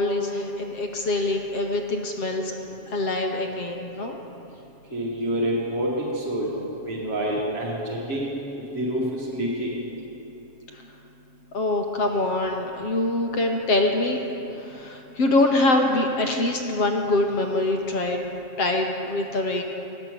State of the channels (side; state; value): right; late; 7.4 ms